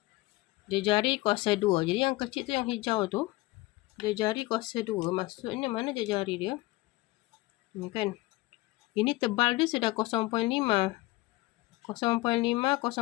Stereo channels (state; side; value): quieter; right; 20.5 dB